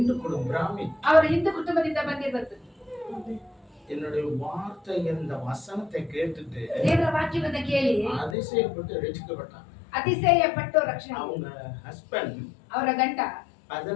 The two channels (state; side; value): drops out; right; at 8.3 s